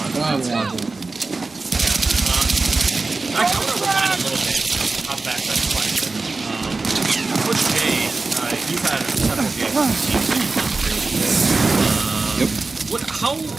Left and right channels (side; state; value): left; quieter; 3.7 dB